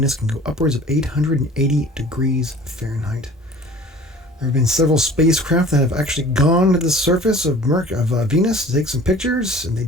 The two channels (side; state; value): both; normal; correlation 0.46